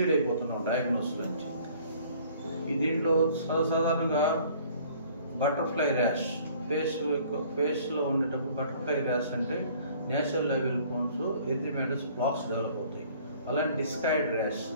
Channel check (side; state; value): both; inverted; correlation -0.54